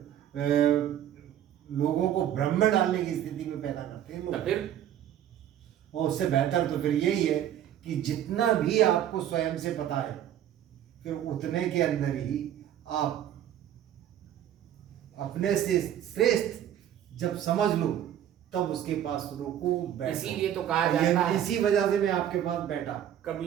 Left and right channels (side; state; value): left; quieter; 10.8 dB